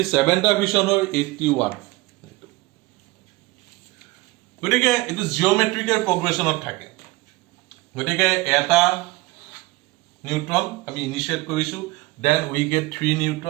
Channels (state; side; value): quieter; left; 21.0 dB